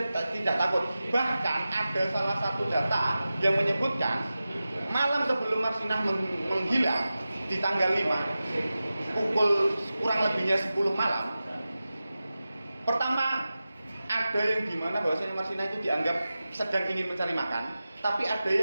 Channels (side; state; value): both; inverted; correlation -0.94